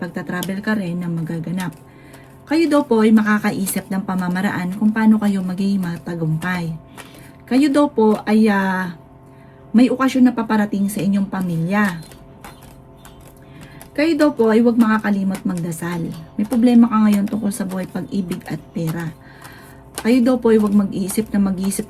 ka rin na magaganap. Kayo daw po ay makakaisip ng pamamaraan kung paano kayo magiging matagumpay. Kayo daw po ay may okasyon na paparating sa inyong pamilya. Kayo daw po ay huwag makakalimot magdasal. May problema ka ngayon tungkol sa buhay, pag-ibig at pera. Kayo daw po ay huwag mag-iisip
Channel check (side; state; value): both; identical; correlation 1.00